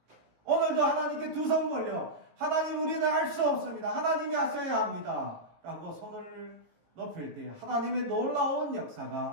오늘도 하나님께 두 손 벌려 하나님 우리는 할 수 없습니다. 하나님이 하셔야 합니다. 라고 손을 높일 때 하나님의 놀라운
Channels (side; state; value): left; late; 18 ms